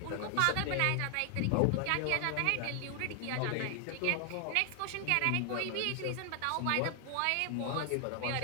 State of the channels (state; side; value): different; both; correlation 0.00